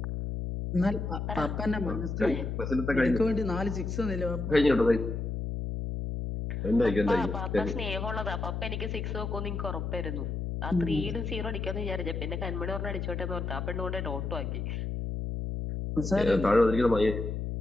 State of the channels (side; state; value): left; noise; hum, 3 dB below the sound